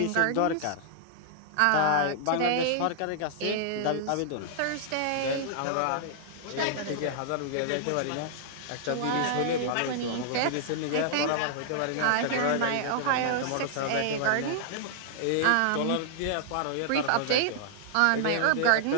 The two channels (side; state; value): both; different; correlation -0.01